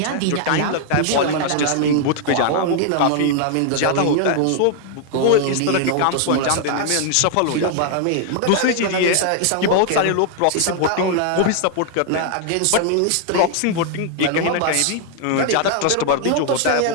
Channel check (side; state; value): both; different; correlation 0.00